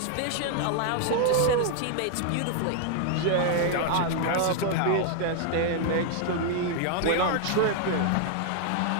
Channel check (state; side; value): different; both; correlation 0.00